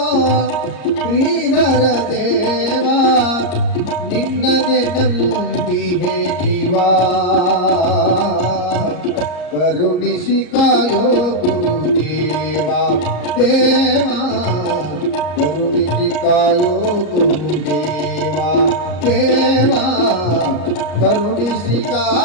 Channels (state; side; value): late; right; 34 ms